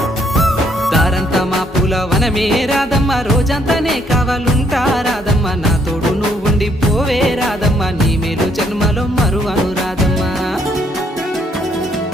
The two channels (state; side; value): normal; both; correlation 0.69